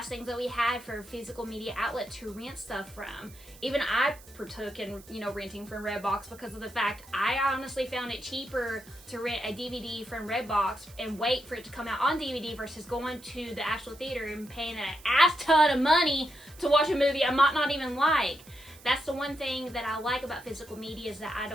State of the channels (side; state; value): right; noise; hiss, 22 dB below the sound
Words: things that we had for a physical media outlet to rent stuff from. Even I partook in, you know, renting from Redbox because of the fact I honestly found it cheaper to rent a DVD from Redbox and wait for it to come out on DVD versus going to the actual theater and paying an ass ton of money to watch a movie I might not even like. That's the one thing that I like about physical media, is that I